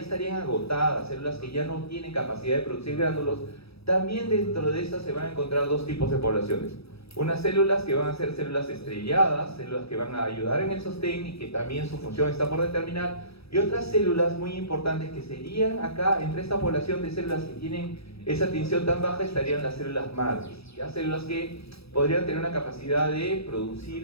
agotadas, células que ya no tienen capacidad de producir gránulos, también dentro de estas se van a encontrar dos tipos de poblaciones. Unas células que van a ser células estrelladas, células que van a ayudar en el sostén y que también su función está por determinar, y otras células muy importantes que serían acá, entre esta población de células que tienen esa tinción tan baja, estarían las células madres, ¿ya? Células que podrían tener una capacidad de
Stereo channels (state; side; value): late; right; 0.77 ms